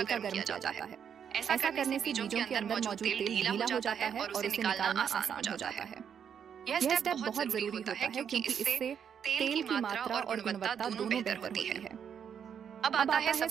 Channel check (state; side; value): quieter; left; 7.9 dB